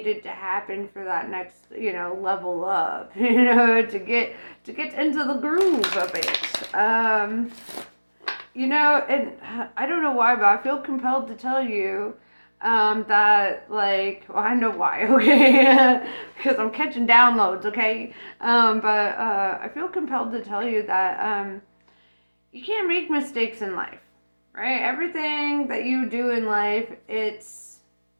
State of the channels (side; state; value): both; inverted; correlation -1.00